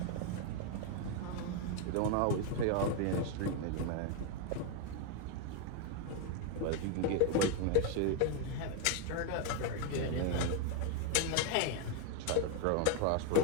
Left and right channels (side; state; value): both; different; correlation 0.01